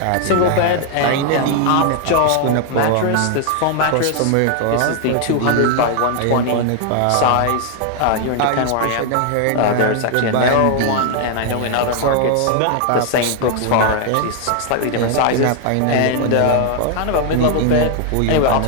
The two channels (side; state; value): both; different; correlation 0.00